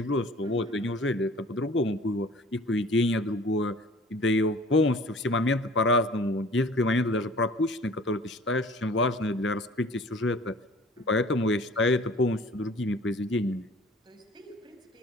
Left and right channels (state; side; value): normal; both; correlation 0.48